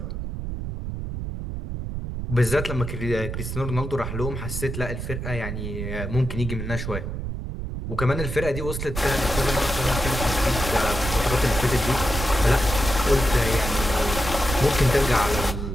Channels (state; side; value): noise; right; rumble, 5 dB below the sound